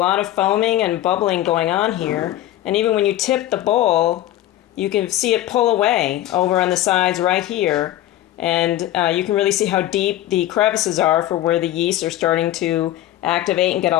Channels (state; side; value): quieter; right; 13.9 dB